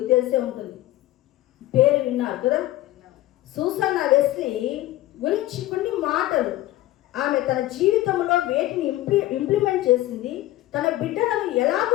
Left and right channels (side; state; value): right; quieter; 15.8 dB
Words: తెలిసే ఉంటుంది, పేరు విన్నారు కదా. సూసన్నా వెస్లీ గురించి కొన్ని మాటలు, ఆమె తన జీవితంలో వేటిని ఇంప్లిమెంట్ చేసింది, తన బిడ్డలను ఎలాగ